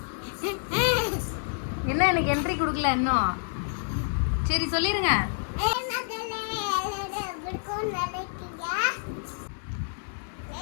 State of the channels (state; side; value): silent; right; digital silence